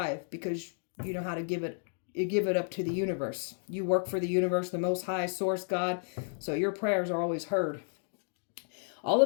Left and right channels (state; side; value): silent; right; digital silence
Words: because you know how to give it up to the universe. You work for the universe, the Most High Source God. So your prayers are always heard. All